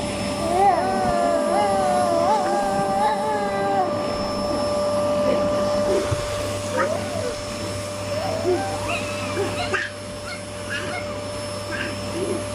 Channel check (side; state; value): both; identical; correlation 1.00